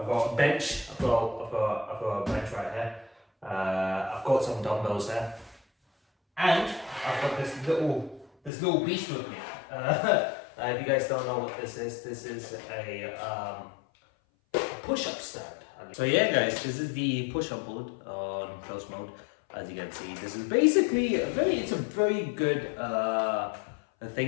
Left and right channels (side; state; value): right; drops out; at 8.5 s